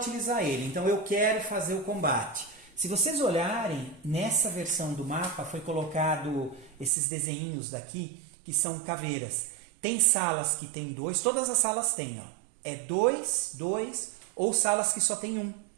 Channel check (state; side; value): drops out; left; at 6.9 s